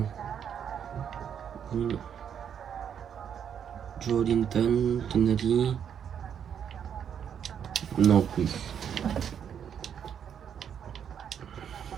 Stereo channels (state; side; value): quieter; left; 8.3 dB